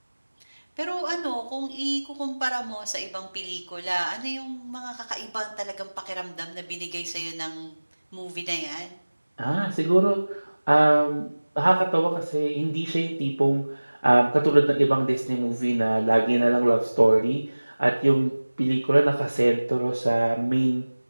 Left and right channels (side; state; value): both; inverted; correlation -1.00